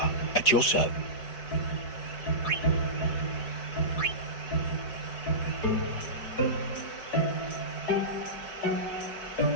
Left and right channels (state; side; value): late; right; 4.7 ms